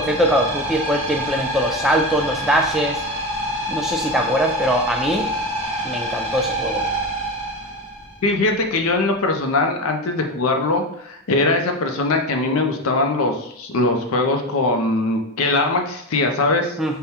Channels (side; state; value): both; normal; correlation 0.21